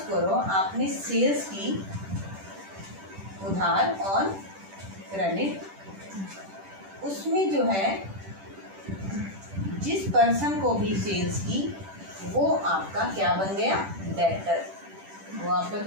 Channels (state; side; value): late; left; 10 ms